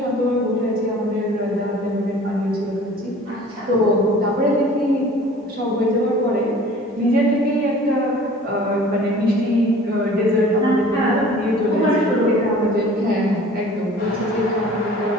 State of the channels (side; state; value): both; normal; correlation 0.47